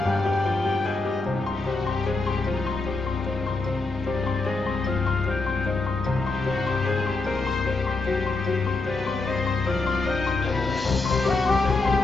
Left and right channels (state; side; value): quieter; right; 3.4 dB